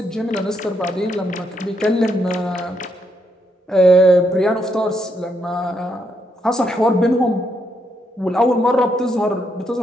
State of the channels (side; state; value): both; normal; correlation 0.77